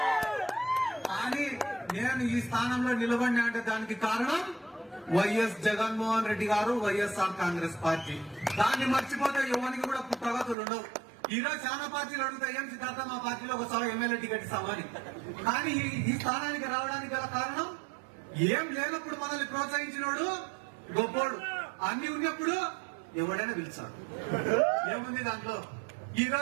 కానీ నేను ఈ స్థానంలో నిలబడినా అంటే దానికి కారణం వైఎస్ జగన్మోహన్ రెడ్డి గారు, వైఎస్ఆర్ కాంగ్రెస్ పార్టీ. దాన్ని మర్చిపోతే ఎవరికి కూడా ప్రగతులు ఉండవు. ఈ రోజు చాలా పార్టీలు అడుగుతాయి, ఏం సిద్ధార్థ మా పార్టీలో ఒకసారి ఎమ్మెల్యే టికెట్ ఇస్తామని. కానీ ఈ స్థానానికి రావడానికి గల కారణం ఏం లేనప్పుడు మనల్ని ప్రోత్సహించినోడు గొప్పోడు, అన్ని ఉన్నప్పుడు ఎవడైనా పిలిచాడు. ఏముంది దాంట్లో? ఈ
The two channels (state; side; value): drops out; left; at 10.6 s